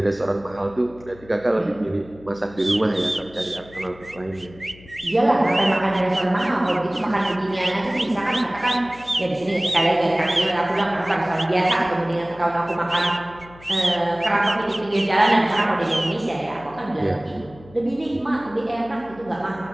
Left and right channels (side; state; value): left; noise; hum, 22 dB below the sound